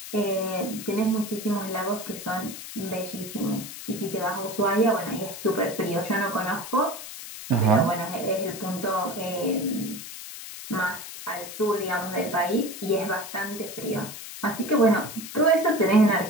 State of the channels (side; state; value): left; noise; hiss, 11 dB below the sound